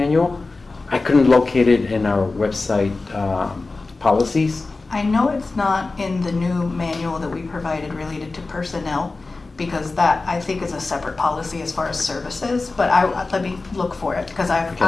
I couldn't locate it in our website policies. I know it's not in the new manual that we provided related to personnel, because that, I think, is a separate policy as far as services, but let me look for it, because Okay.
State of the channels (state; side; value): quieter; right; 3.6 dB